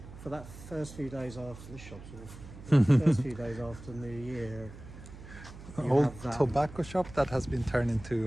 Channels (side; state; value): right; noise; hum, 15 dB below the sound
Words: for that first few days after this shop's awful. First few days after New Year, you Old have that, tobacco shop that has been turned